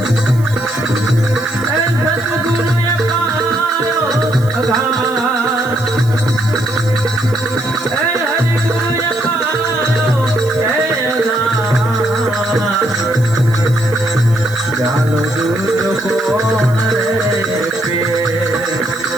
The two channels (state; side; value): noise; right; hiss, 21 dB below the sound